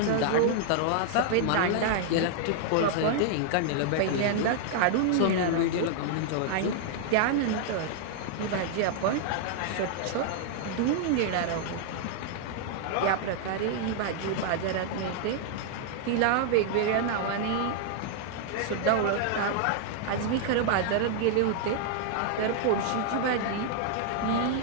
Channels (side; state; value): both; different; correlation 0.00